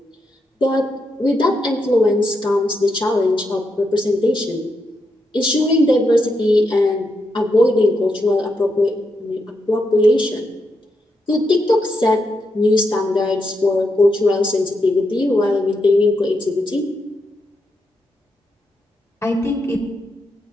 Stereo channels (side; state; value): both; normal; correlation 0.83